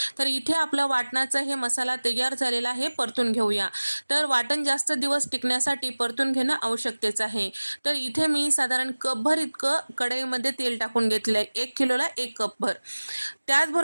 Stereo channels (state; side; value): inverted; both; correlation -1.00